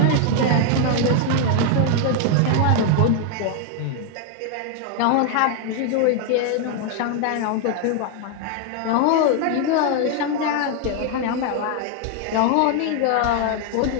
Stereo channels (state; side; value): different; both; correlation 0.00